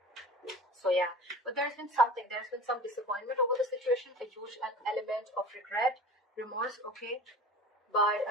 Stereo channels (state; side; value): normal; both; correlation 0.39